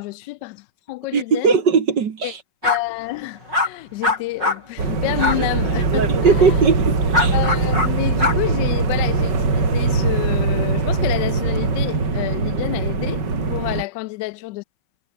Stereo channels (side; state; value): left; late; 5.3 ms